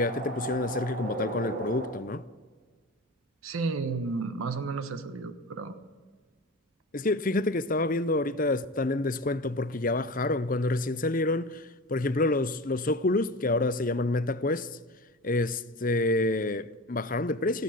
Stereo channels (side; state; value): both; normal; correlation 0.31